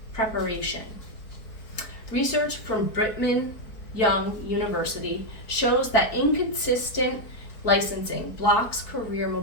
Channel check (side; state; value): right; late; 4.5 ms